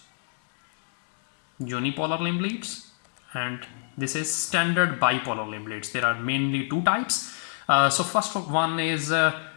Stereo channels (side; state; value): right; silent; digital silence